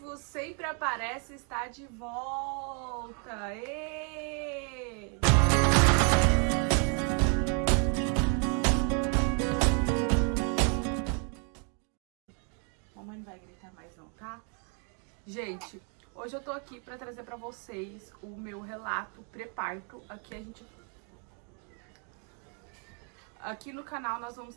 sempre aparece, está de volta. Êêêê! Mamãe não vai gritar mais não, tá? Gente, hoje eu tô aqui pra trazer pra vocês o meu relato pré-parto. Aqui no canal nós vamos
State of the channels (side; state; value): left; quieter; 39.3 dB